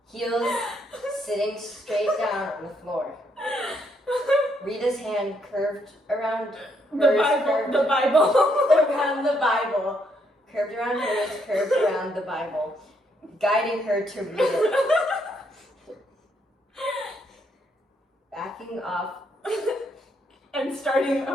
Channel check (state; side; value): normal; both; correlation 0.74